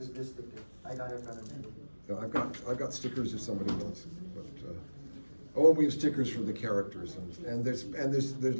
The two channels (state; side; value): inverted; both; correlation -1.00